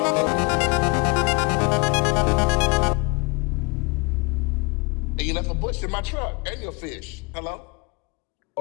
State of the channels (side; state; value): right; quieter; 29.0 dB